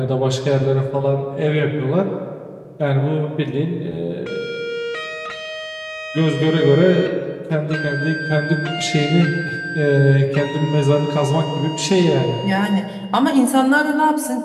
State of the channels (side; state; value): both; identical; correlation 1.00